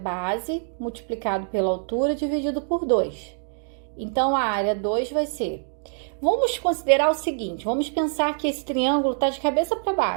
multiplicado pela altura dividido por 2. Então, a área 2 vai ser... Vamos considerar o seguinte, vamos pensar que esse triângulo está de cabeça para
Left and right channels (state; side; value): silent; left; digital silence